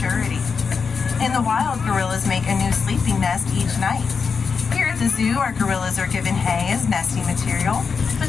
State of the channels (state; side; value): quieter; right; 5.5 dB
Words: In the wild, gorillas make a new sleeping nest each night. Here at the zoo, our gorillas are given hay as nesting material,